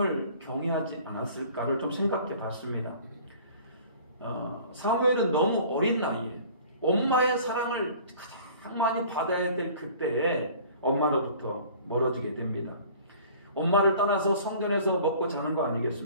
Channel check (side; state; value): both; inverted; correlation -0.48